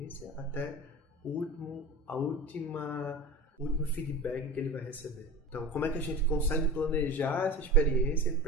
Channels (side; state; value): both; normal; correlation 0.30